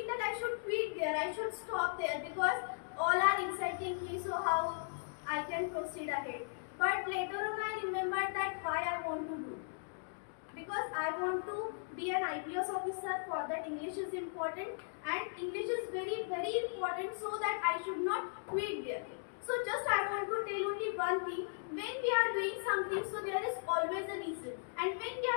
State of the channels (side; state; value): right; silent; digital silence